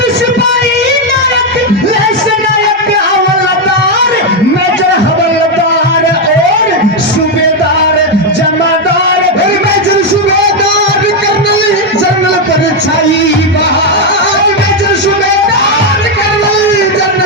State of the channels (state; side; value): normal; both; correlation 0.04